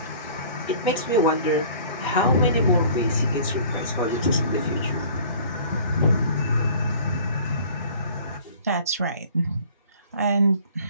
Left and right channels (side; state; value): both; inverted; correlation -0.49